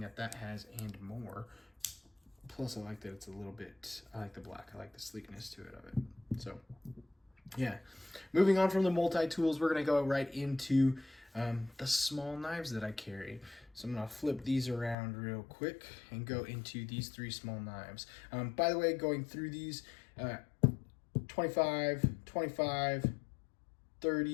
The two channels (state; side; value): drops out; right; at 15.0 s